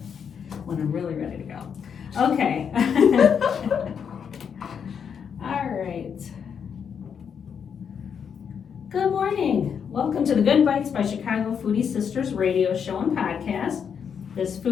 When I'm really ready to go. Okay. All right. Good morning. Welcome to the Good Bites by Chicago Foodie Sisters radio show and podcast. This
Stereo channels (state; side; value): quieter; right; 7.2 dB